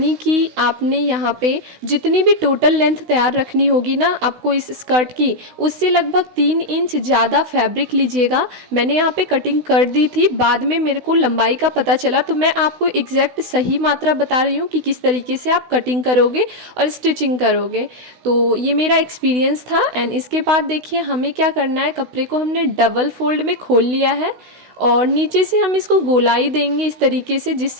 कि आपने यहाँ पे जितनी भी टोटल लेंथ तैयार रखनी होगी ना आपको इस स्कर्ट की, उससे लगभग 3 इंच ज़्यादा फैब्रिक लीजिएगा। मैंने यहाँ पे कटिंग कर दी थी, बाद में मेरे को लंबाई का पता चला तो मैं आपको एग्जैक्ट सही मात्रा बता रही हूँ कि किस तरीके से आप कटिंग करोगे और स्टिचिंग करोगे। तो ये मेरा एक्सपीरियंस था। एंड इसके बाद देखिए हमें क्या करना है, कपड़े को हमने डबल फोल्ड में खोल लिया है और नीचे से हम इसको गोलाई देंगे इस तरीके से। जिस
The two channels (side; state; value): left; late; 16 ms